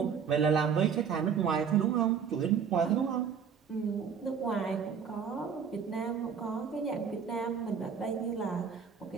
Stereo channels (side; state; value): left; quieter; 6.9 dB